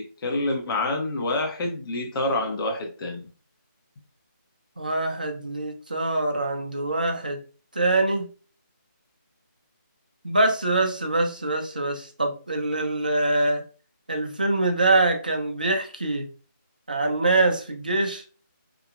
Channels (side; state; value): both; inverted; correlation -0.67